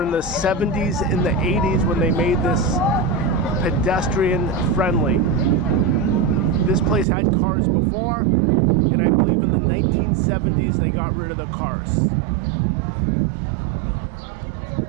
the 70s and the 80s when they made this pedestrian friendly. This place had cars before, and I believe in the 1970s they got rid of the cars.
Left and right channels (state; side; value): drops out; left; at 7.1 s